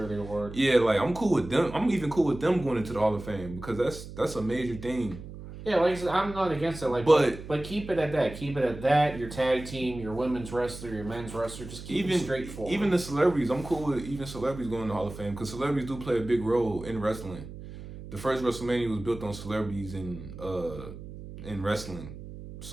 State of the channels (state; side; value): noise; right; hum, 12 dB below the sound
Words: the award. Yeah, like I'm cool with them. I'm even cool with them going into the Hall of Fame because that's a major thing. Yeah, like I said, I'm not against it. Like, but keep it at that. Keep it at that. Your tag team, your women's wrestler, your men's wrestler, just keep it straightforward. Even the celebrities, I'm cool with even celebrities going to the Hall of Fame because celebrities do play a big role in wrestling. The first WrestleMania was built on celebrities in wrestling,